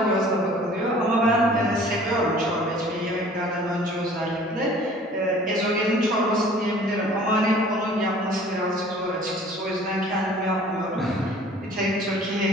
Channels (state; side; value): normal; both; correlation 0.50